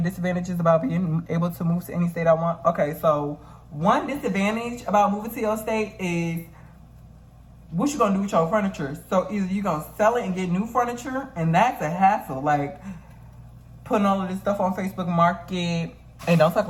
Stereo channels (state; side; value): identical; both; correlation 1.00